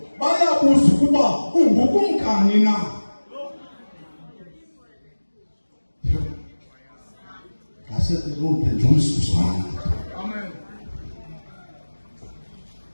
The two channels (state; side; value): inverted; both; correlation -1.00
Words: bayabuza ukuba ungukumkani na. Amen.